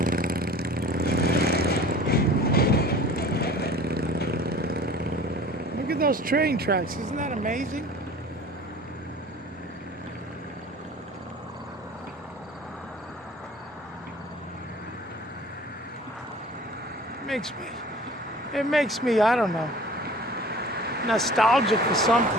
Look at those train tracks. Isn't that amazing? It makes me, I don't know, nostalgic for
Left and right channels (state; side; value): normal; both; correlation 0.44